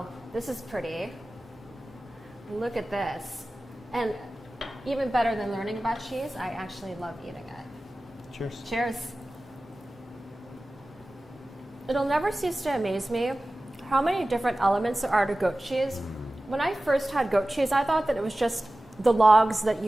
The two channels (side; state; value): both; normal; correlation 0.96